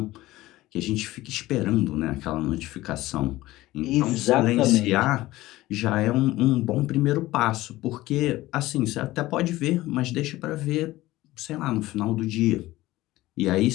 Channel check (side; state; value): right; quieter; 17.3 dB